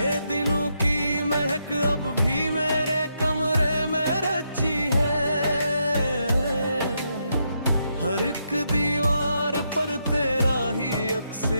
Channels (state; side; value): inverted; both; correlation -0.80